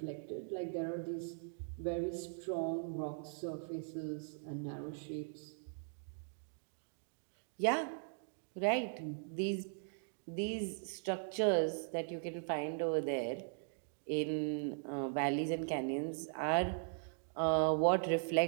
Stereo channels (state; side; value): silent; left; digital silence